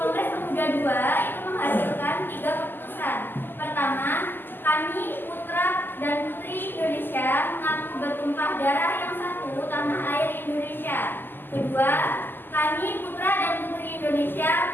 Pemuda II itu menghasilkan 3 keputusan. Pertama, kami putra dan putri Indonesia mengaku bertumpah darah yang satu tanah air Indonesia. Kedua, kami putra dan putri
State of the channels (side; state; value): right; late; 0.093 ms